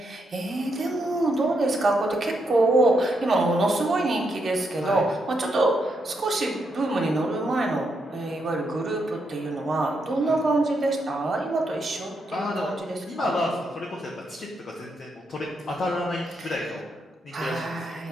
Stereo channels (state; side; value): normal; both; correlation 0.80